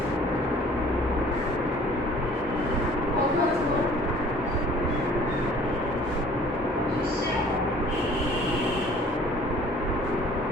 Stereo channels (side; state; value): both; normal; correlation 0.52